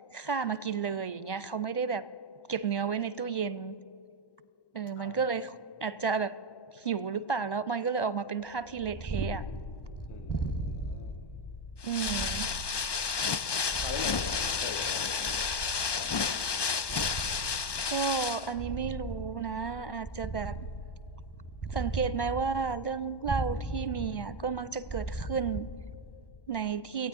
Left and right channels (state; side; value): late; right; 1.2 ms